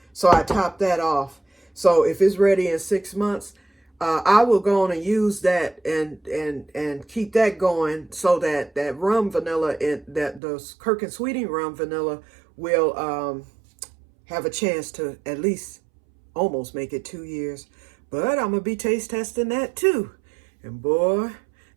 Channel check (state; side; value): drops out; left; at 10.4 s